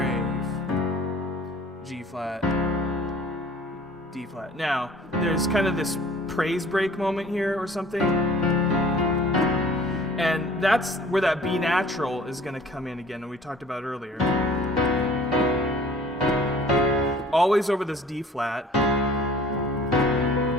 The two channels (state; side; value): normal; both; correlation 0.50